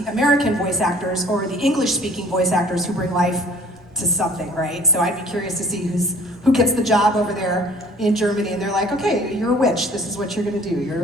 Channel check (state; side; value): normal; both; correlation 0.52